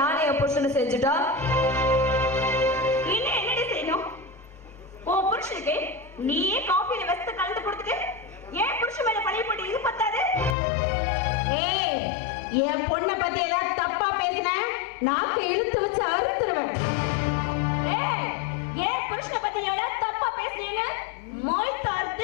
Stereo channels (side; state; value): right; drops out; at 10.6 s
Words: என் புருஷனை செஞ்சுட்டா என்ன என்னடி செய்யணும்? உன் புருஷனுக்கு நீயே காஃபியில வெஸ்த கலந்து கொடுத்துட்டு ஏன் புருஷன் மேல பழைய போட்டு இது பத்தாது? ஏய், என் பொண்ணை பத்தி ஏதாவது தப்பா பேசின நாக்கு இழுத்து வச்சு அறுத்துருவேன். ஏன் புருஷனை பத்தி எவ்வளவு தப்பா பேசுறீங்க? மொய்